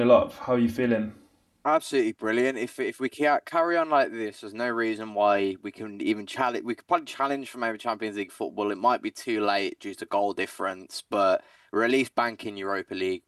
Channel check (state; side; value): identical; both; correlation 1.00